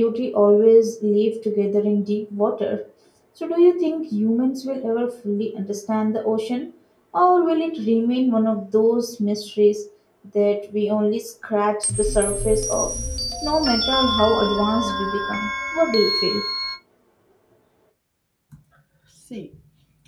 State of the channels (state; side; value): identical; both; correlation 1.00